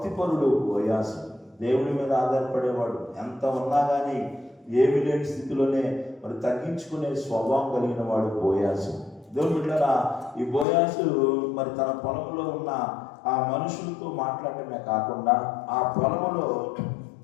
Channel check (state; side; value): drops out; right; at 10.7 s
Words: బోయాజు, దేవుని మీద ఆధారపడేవాడు. ఎంత ఉన్నా కానీ ఏమి లేని స్థితిలోనే మరి తగ్గించుకునే స్వభావం కలిగిన వాడు బోయాజు. దేవుని బిడ్డలారా, ఈ బోయాజు మరి తన పొలంలో ఉన్న ఆ మనుషులతో మాట్లాడటమే కాకుండా ఆ పొలంలో